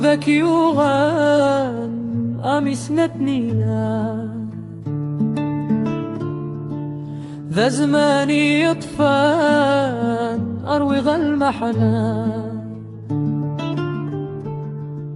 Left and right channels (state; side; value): identical; both; correlation 1.00